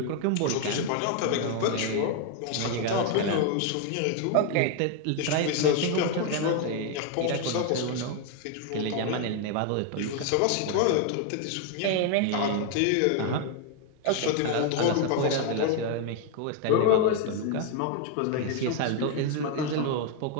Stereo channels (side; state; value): both; different; correlation 0.01